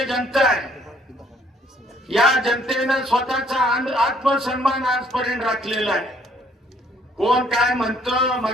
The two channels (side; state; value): both; normal; correlation 0.63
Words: आहे. या जनतेनं स्वतःचा आत्मसन्मान आजपर्यंत राखलेला आहे. कोण काय म्हणतं,